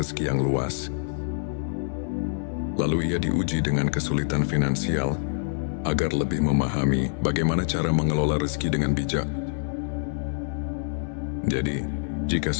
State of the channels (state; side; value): silent; right; digital silence